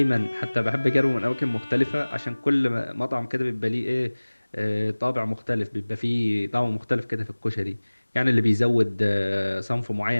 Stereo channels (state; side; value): inverted; both; correlation -1.00